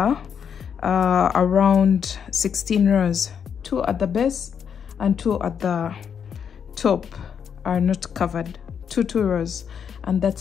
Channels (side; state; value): right; quieter; 7.5 dB